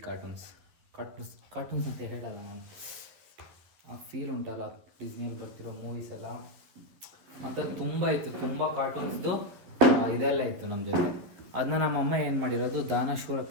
ಕಾರ್ಟೂನ್ಸ್ ಅಂತ ಹೇಳಲ್ಲ ನಾನು. ಆ ಫೀಲ್ ಉಂಟಲ್ಲ, ಡಿಸ್ನಿಯಲ್ಲಿ ಬರ್ತಿರೋ ಮೂವೀಸ್ ಎಲ್ಲ ಅಂಥದ್ದು ತುಂಬ ಇತ್ತು. ತುಂಬ ಕಾರ್ಟೂನ್ಸ್ದು ಇದೆಲ್ಲ ಇತ್ತು ನಮ್ಮ ಜೊತೆ. ಅದನ್ನ ನಮ್ಮಮ್ಮ ಏನು ಮಾಡಿರೋದು, ದಾನಶೂರ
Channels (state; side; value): late; left; 12 ms